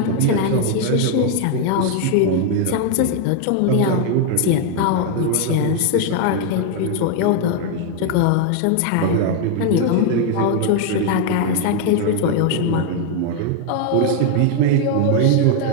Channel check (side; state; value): both; different; correlation 0.00